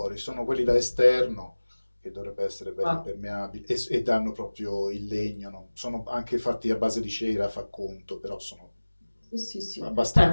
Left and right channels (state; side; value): inverted; both; correlation -1.00